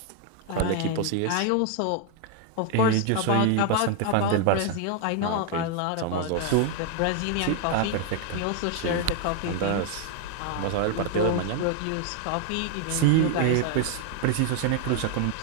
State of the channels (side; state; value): both; different; correlation 0.00